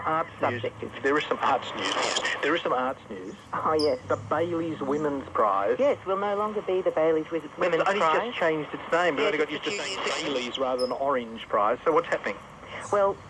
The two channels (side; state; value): both; identical; correlation 1.00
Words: news. There is some arts news. There is some arts news. Oh, yes. The Bailey's Women's Prize. Yes, will no longer be the Bailey's Women's Prize. It's only just changed its name, but only got used to saying Bailey's rather than Orange Prize. So what's happening? Well,